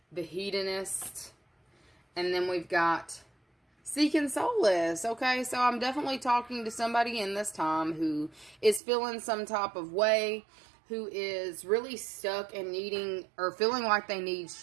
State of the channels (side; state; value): left; drops out; at 8.8 s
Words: the hedonist, and then we've got seeking solace. Okay, so I'm definitely talking to somebody in this time who is feeling some type of way, who is really stuck and needing or feeling like they need